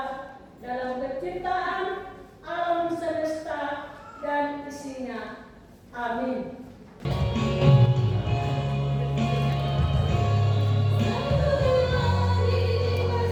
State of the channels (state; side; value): identical; both; correlation 1.00